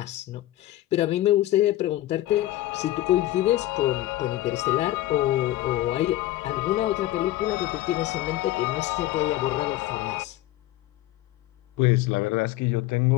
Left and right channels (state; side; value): quieter; right; 15.5 dB